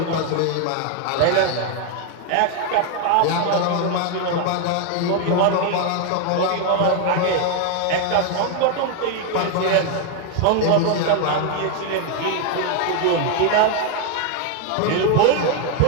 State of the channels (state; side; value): different; both; correlation 0.01